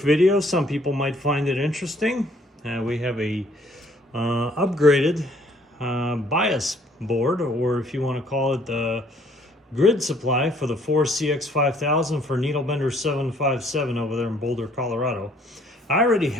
video. Some people might find it interesting. We have a upgraded bias board, or if you want to call it the grid supply for the 4CX5000 for NB757 over there in Boulder, Colorado. I already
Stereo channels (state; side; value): normal; both; correlation 0.61